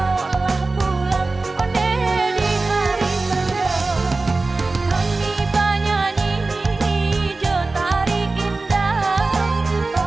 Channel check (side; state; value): left; quieter; 3.5 dB